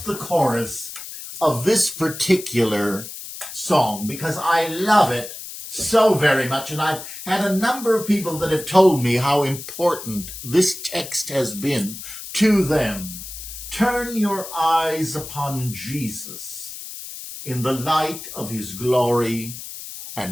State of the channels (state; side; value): noise; left; hiss, 11 dB below the sound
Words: the chorus of this particular song because I love it so very much, and I've had a number of people that have told me how important this text has been to them. Turn your eyes upon Jesus in the light of his glory